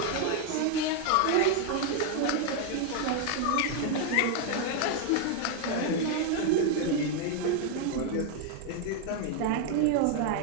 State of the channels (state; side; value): different; both; correlation 0.00